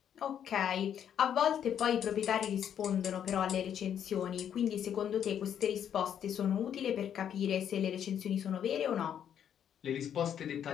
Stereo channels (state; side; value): quieter; right; 9.2 dB